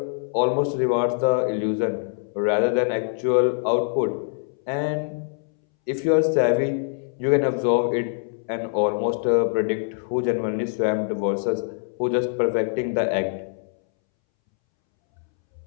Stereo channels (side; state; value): right; silent; 63 dB below the other